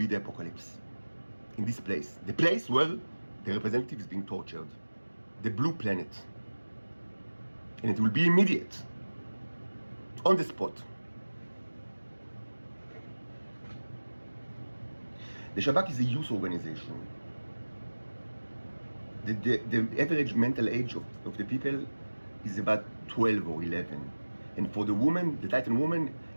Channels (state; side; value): inverted; both; correlation -1.00